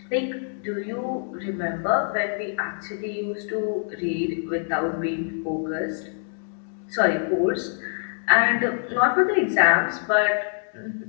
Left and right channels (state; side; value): silent; right; 62 dB below the other